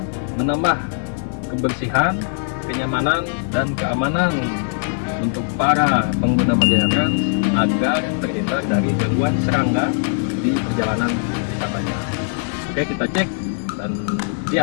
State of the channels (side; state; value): right; silent; digital silence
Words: menambah kebersihan, kenyamanan, dan keamanan untuk para pengguna Marjaya Trans agar terhindar dari gangguan serangga di perjalanan wisatanya. Oke, kita cek dan